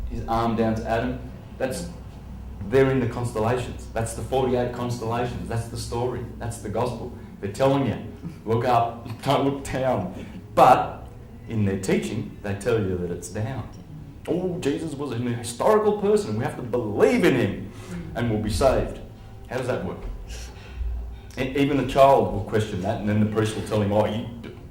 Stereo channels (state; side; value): identical; both; correlation 1.00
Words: his arm down to Adam. They're in the constellations. That's the 48 constellations. That's the story. That's the gospel. They're telling you, look up, don't look down. But in their teaching, they tell you that it's down. Oh, Jesus was a historical person. We have to believe in him and we'll be saved. How does that work? Even a child will question that, and then the priest will tell him, oh, you